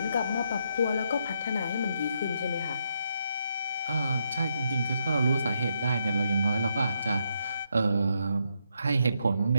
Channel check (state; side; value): inverted; both; correlation -0.78